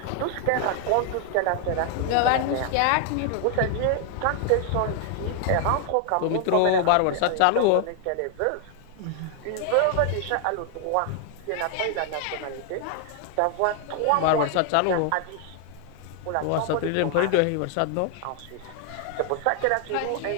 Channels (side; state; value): both; different; correlation 0.00